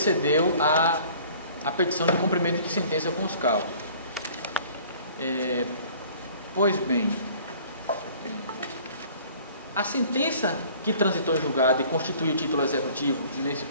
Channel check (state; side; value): inverted; both; correlation -0.51